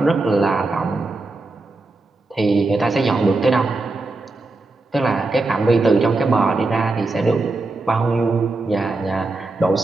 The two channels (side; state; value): left; quieter; 3.3 dB